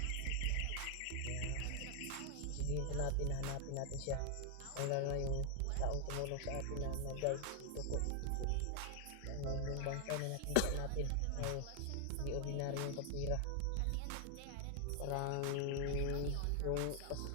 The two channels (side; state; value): both; different; correlation 0.00